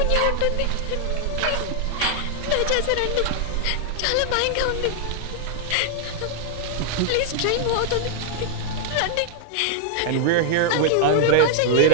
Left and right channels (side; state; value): both; different; correlation 0.00